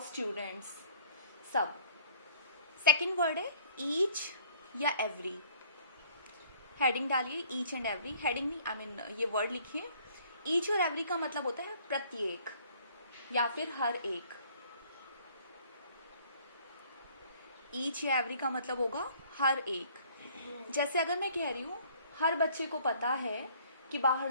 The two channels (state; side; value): inverted; both; correlation -0.57